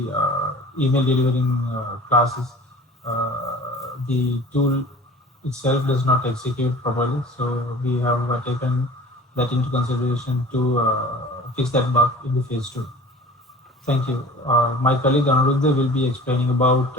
email delivering classes, the tool itself does not execute properly. So we have taken that into consideration to fix that bug in the phase 2. Thank you. My colleague Anuruddha will be explaining about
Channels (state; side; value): normal; both; correlation 0.43